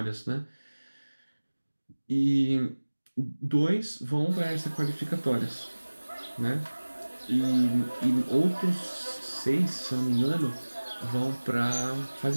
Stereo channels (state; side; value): inverted; both; correlation -1.00